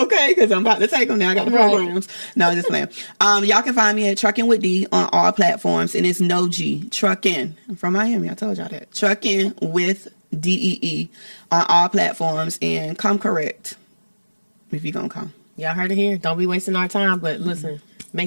because I'm about to take them now. I got the programs. No, just playing. Y'all can find me at Truckin with D on all platforms, and it's no G. Truckin. I'm from Miami. I told y'all that. Truckin with DEE on all platforms, and come correct if you're gonna come. Y'all heard it here. Don't be wasting our time, but listen,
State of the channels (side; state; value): both; inverted; correlation -1.00